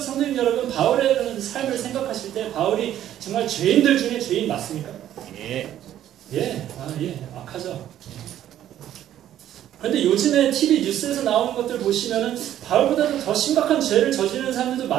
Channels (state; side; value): quieter; left; 11.8 dB